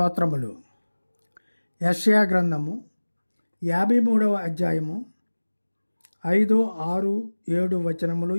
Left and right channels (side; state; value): both; inverted; correlation -1.00